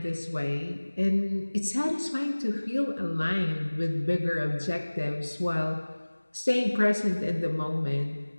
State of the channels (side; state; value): both; inverted; correlation -1.00